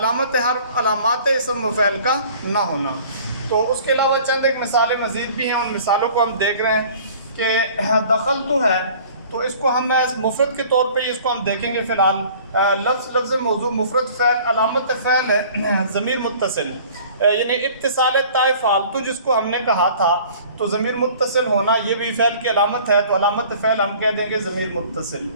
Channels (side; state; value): both; inverted; correlation -0.49